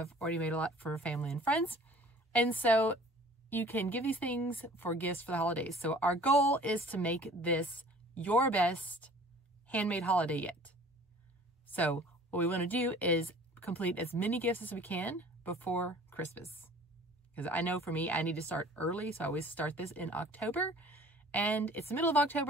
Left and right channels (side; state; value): both; normal; correlation 0.49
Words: already made a lot for family and friends. And so you can give these things for gifts for the holidays. So our goal is to make this your best handmade holiday yet. So what we want to do is complete as many gifts as we can before Christmas. Because I know for me, I need to start early. So I always start this in October. And it's the middle of